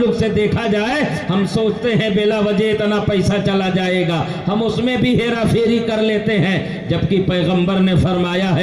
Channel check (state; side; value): identical; both; correlation 1.00